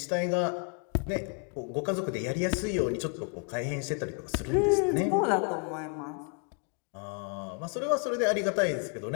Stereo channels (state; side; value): quieter; right; 37.9 dB